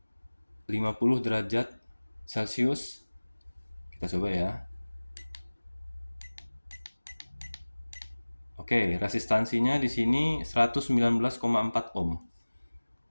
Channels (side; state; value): both; inverted; correlation -1.00